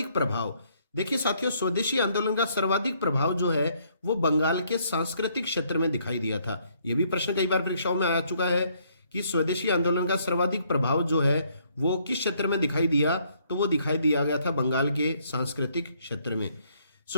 प्रभाव। देखिए साथियों, स्वदेशी आंदोलन का सर्वाधिक प्रभाव जो है वो बंगाल के सांस्कृतिक क्षेत्र में दिखाई दिया था। यह भी प्रश्न कई बार परीक्षाओं में आ चुका है कि स्वदेशी आंदोलन का सर्वाधिक प्रभाव जो है वो किस क्षेत्र में दिखाई दिया? तो वो दिखाई दिया गया था बंगाल के सांस्कृतिक क्षेत्र में।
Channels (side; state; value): both; inverted; correlation -0.68